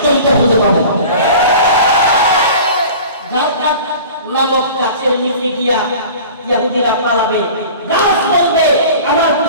খুঁজে পাবে। জাকাত নামক গাছের নিচে গিয়া ইহুদিরা পালাবে, গাছ বলবে আমার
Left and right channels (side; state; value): both; inverted; correlation -0.41